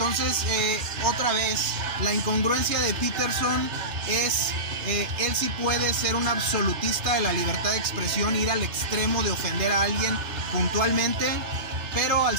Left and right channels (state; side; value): late; left; 3.3 ms